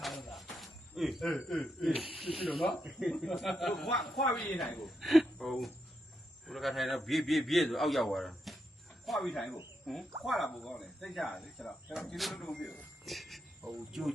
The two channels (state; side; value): normal; both; correlation 0.82